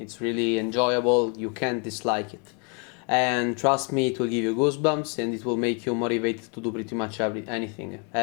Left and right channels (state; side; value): quieter; right; 36.4 dB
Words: really enjoyable. You can't dislike it. And trust me, it will give you goosebumps and it will make you motivated to do pretty much anything